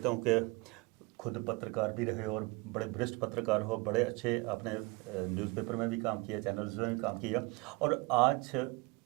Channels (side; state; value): left; quieter; 25.8 dB